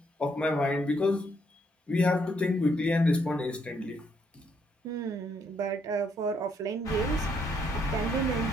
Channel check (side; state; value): both; normal; correlation 0.73